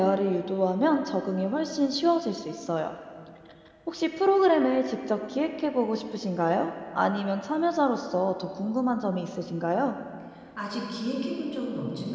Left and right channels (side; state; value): both; identical; correlation 1.00